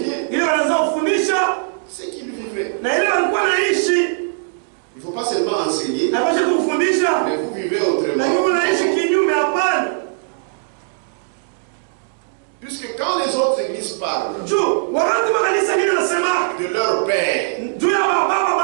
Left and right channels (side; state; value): left; silent; digital silence